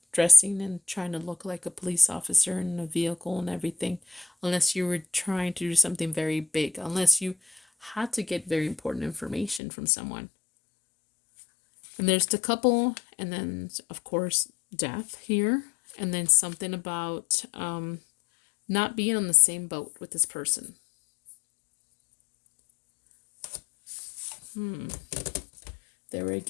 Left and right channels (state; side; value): drops out; right; at 9.6 s